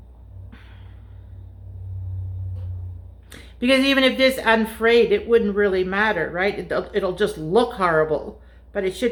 Because even if this unfrayed, it wouldn't really matter, right? It'll just look horrible, but it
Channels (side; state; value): both; identical; correlation 1.00